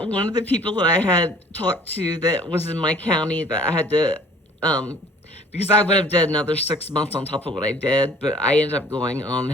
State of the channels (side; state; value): both; normal; correlation 0.52